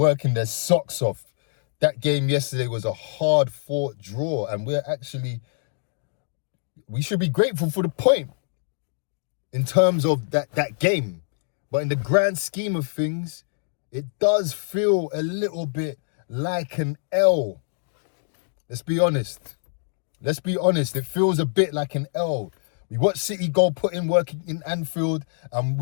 their socks off. That game yesterday was a hard-fought draw, and we should be grateful for the point in terms of that game. But in the grand scheme of things, it does feel a little bit like an L. Let's be honest. It feels a bit like an L. We watched City go put in work in Anfield, and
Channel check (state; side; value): silent; right; digital silence